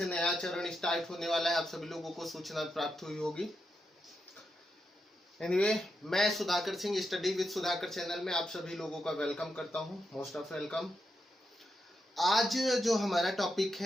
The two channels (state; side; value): normal; both; correlation 0.85